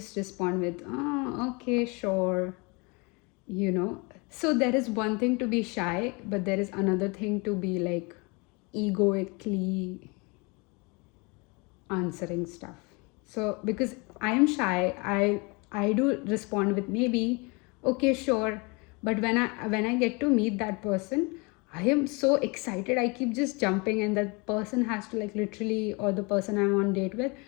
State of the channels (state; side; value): quieter; right; 28.8 dB